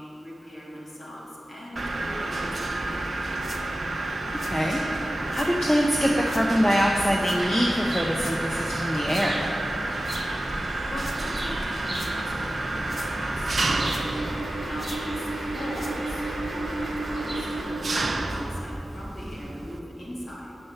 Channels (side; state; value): both; normal; correlation 0.94